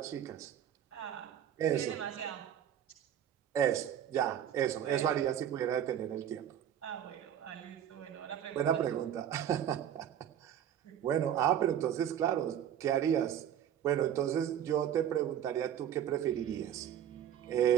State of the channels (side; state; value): left; quieter; 10.0 dB